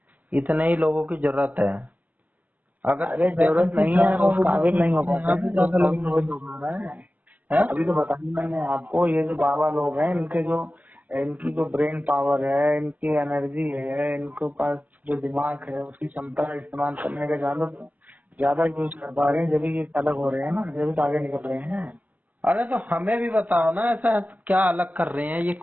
इतने ही लोगों की जरूरत है। अगर अरे जरूरत वैकेंसी नहीं है, ज्यादा उस होगी काबिल तो नहीं हो पाते यहाँ हैं, भी जो ज्यादा लोग तभी तो मिलेंगे। हो रहा है। हैं? अभी तो बताया मैंने आपको, ये जो बाबा लोग हैं इनके जो, इनकी जो ब्रेन पावर है, इनकी एनर्जी है, इनके पास जो दिमाग है उसकी क्षमता का इस्तेमाल करने का ज्यादा यूज कर पा रहे हैं, जब ये अलग हो रहे हैं ना, जब तो आगे निकल रहे हैं। अरे तो हमें भी बताओ ना, ऐसा क्या अलग कर रहे हैं, ये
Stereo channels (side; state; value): left; late; 0.080 ms